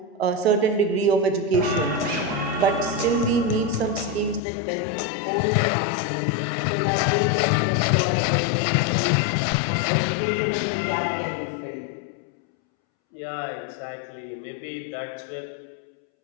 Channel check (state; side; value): drops out; right; at 4.4 s